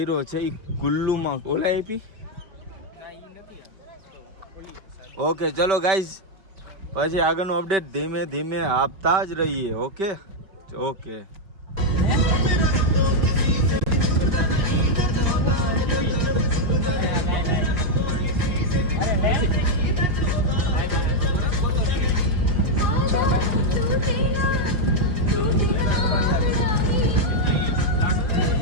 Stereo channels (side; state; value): left; late; 5.1 ms